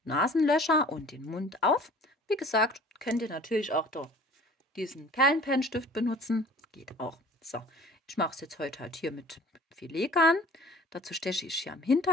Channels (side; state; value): both; normal; correlation 0.48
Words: Nasenlöcher und den Mund auf. Wie gesagt, könnt ihr natürlich auch diesen Perlenpennstift benutzen. Geht auch. So, ich mache es jetzt heute halt hier mit Filetgarn. Dazu steche ich hier am